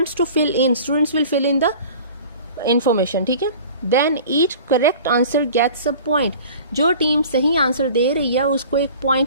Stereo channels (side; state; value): both; inverted; correlation -0.43